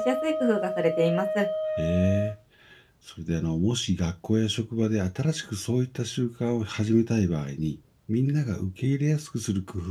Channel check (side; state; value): both; identical; correlation 1.00